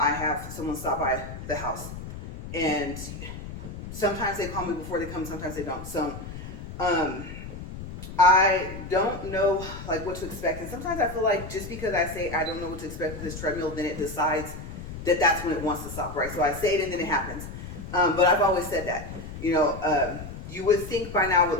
have someone stop by the house. And sometimes they call me before they come, sometimes they don't. So I don't know like what to expect. And sometimes I feel like just because I say I don't know what to expect with this treadmill, then it decides that that's when it wants to stop, right? So I say it and then it happens. But I've always said that, you would think by now I would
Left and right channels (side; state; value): left; noise; rumble, 10 dB below the sound